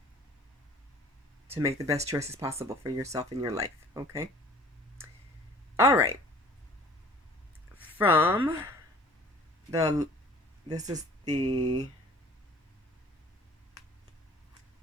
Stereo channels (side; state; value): both; normal; correlation 0.49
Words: to make the best choices possible for yourself in your life, okay? All right. This is the